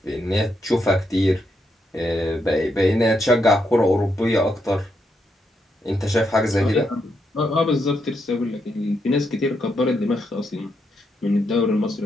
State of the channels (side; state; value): both; normal; correlation 0.80